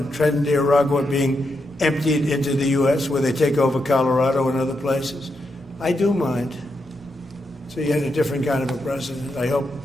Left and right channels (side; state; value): both; normal; correlation 0.84